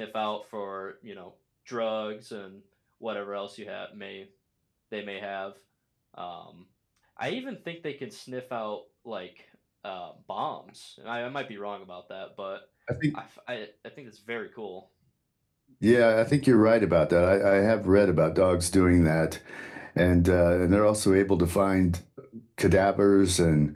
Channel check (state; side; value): identical; both; correlation 1.00